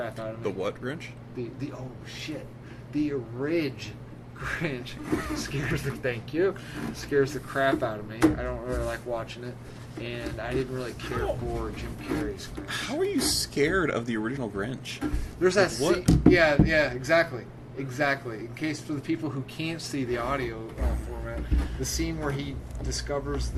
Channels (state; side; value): identical; both; correlation 1.00